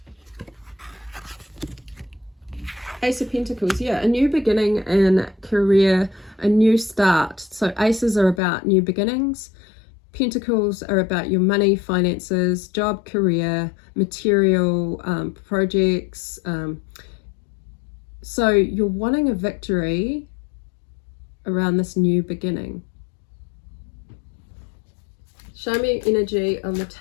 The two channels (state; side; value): drops out; right; at 8.4 s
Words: Ace of Pentacles, yeah, a new beginning in career, a new start. So aces are about new beginnings. Pentacles are about your money, finances, job, career, material, projects. So you're wanting a victory around this new beginning. Show me energy on the